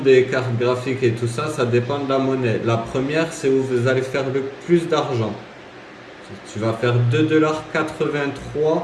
cartes graphiques et tout ça, ça dépend de la monnaie. La première, c'est où vous allez faire le plus d'argent. Tu vas faire 2,83 $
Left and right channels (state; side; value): identical; both; correlation 1.00